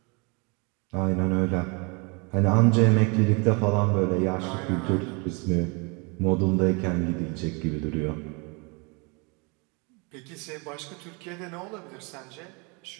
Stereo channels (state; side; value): quieter; left; 30.9 dB